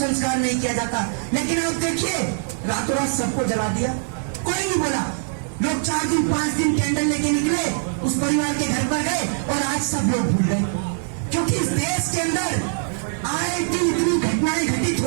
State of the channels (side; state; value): left; silent; digital silence